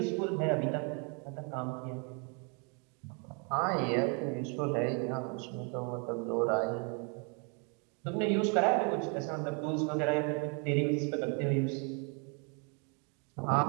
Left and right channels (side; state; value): left; quieter; 36.3 dB